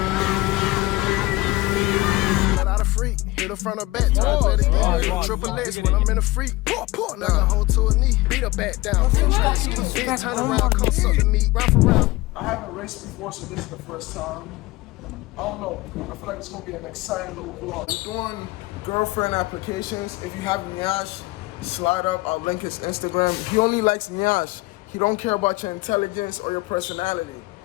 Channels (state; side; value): quieter; right; 20.3 dB